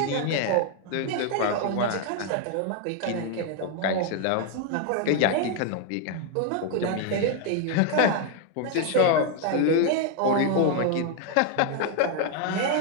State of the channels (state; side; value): different; both; correlation 0.00